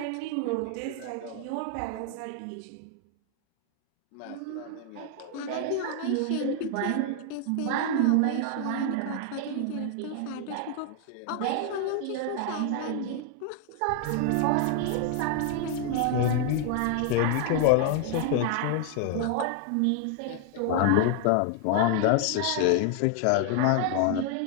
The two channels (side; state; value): both; different; correlation 0.00